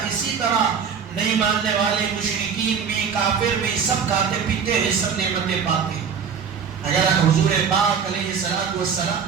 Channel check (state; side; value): quieter; left; 6.6 dB